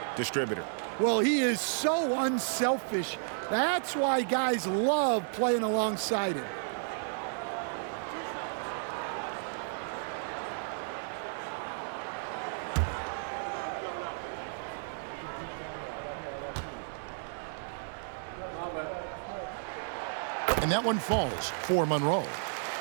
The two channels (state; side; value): silent; left; digital silence